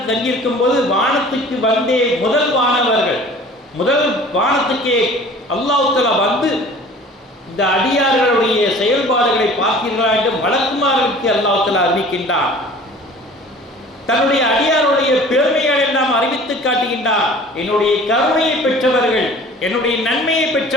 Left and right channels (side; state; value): both; normal; correlation 0.46